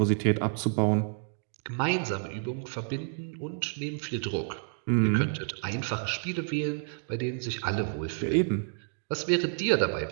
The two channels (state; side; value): silent; left; digital silence